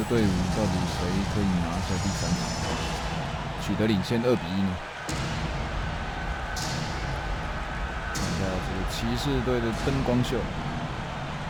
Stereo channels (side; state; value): both; identical; correlation 1.00